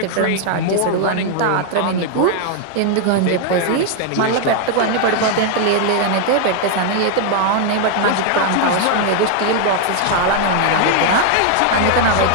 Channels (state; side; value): different; both; correlation 0.00